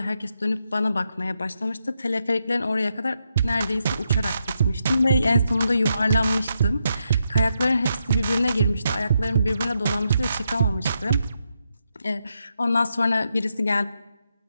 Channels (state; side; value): inverted; both; correlation -0.82